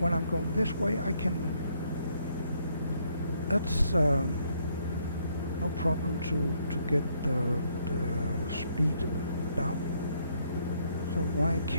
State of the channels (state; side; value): inverted; both; correlation -0.71